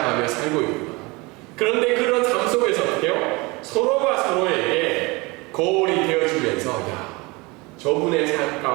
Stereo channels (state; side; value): quieter; left; 25.2 dB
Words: 살고 있구나. 그런데 그런 삶 속에서 어떻게 해요? 서로가 서로에게 거울이 되어주면서 야, 저분의 삶